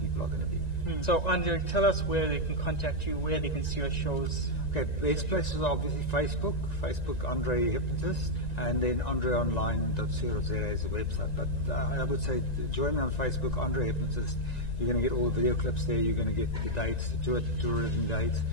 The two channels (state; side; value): late; right; 1.9 ms